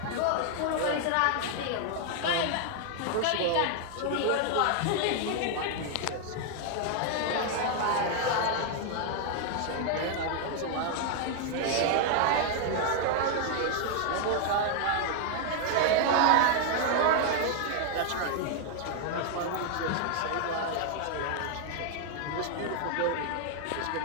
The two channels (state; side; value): different; both; correlation 0.00